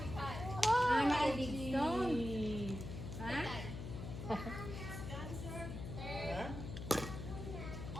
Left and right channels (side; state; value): left; noise; hum, 7 dB below the sound